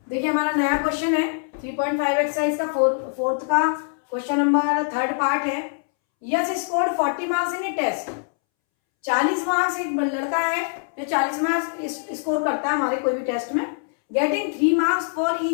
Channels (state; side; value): silent; right; 63 dB below the other